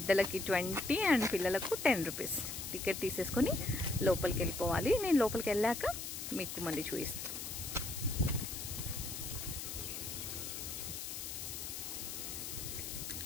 20 అండ్ పిల్లలకు 10 రూపీస్ టికెట్ తీసేసుకొని లోపలికి వెళ్ళిపోవాలి. నేను లోపలికి వెళ్ళాక మీకు మళ్ళీ చూపిస్తాను.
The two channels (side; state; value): left; noise; hiss, 6 dB below the sound